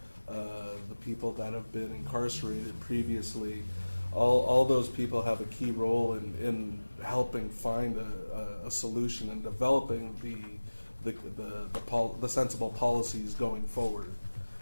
the people that have been incarcerated previously, all those people have a key role in helping find a solution and developing the sensible policies going forward.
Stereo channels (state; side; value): inverted; both; correlation -1.00